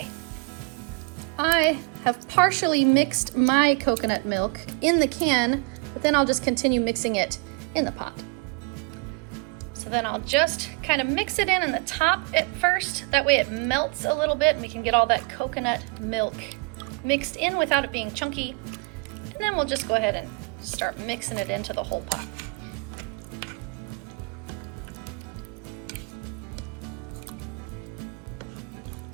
I have partially mixed my coconut milk in the can, but then I'll just continue mixing it in the pot. So then I'll just kind of mix it in the top at first. That way it melts a little bit and we can get all that coconut milk mixed in without it being chunky. And then we'll just go ahead and start mixing it into the whole pot.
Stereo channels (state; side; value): quieter; left; 31.5 dB